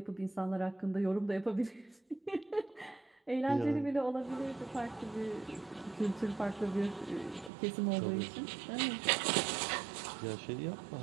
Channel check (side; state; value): left; drops out; at 7.5 s